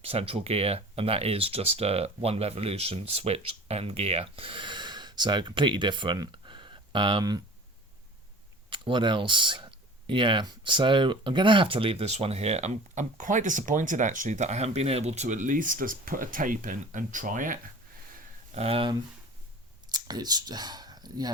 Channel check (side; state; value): both; normal; correlation 0.41